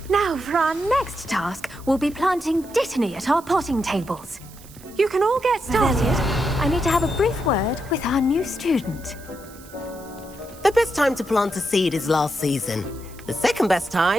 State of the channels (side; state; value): right; noise; hiss, 21 dB below the sound